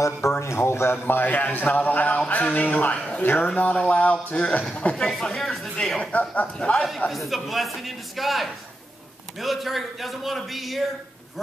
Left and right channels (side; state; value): both; normal; correlation 0.88